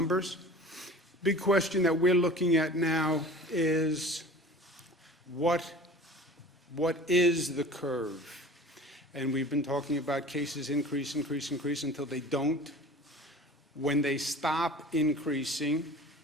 Big question that we're looking at now is what is the curve? And we've been talking about cases increase until they don't. When they stop increasing,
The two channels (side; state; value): both; normal; correlation 0.41